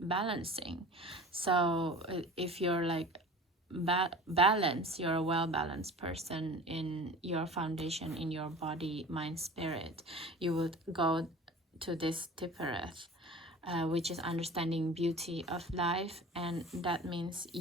So if you're like balance, you're a well-balanced person in your foundation, in your body, mind, spirit, you would go to this Tifereth, which is understanding beauty of life, and that means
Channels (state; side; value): normal; both; correlation 0.39